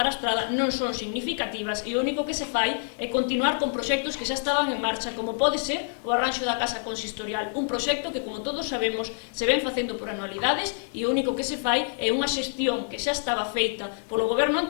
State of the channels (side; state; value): right; silent; digital silence